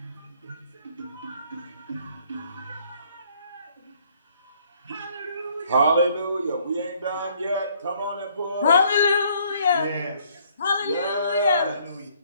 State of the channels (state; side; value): inverted; both; correlation -0.64